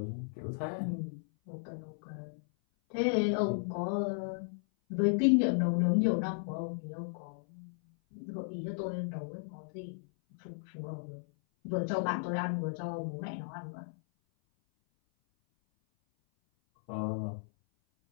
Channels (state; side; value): silent; right; 55 dB below the other